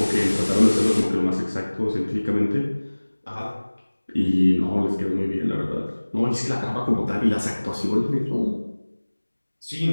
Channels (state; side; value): inverted; both; correlation -1.00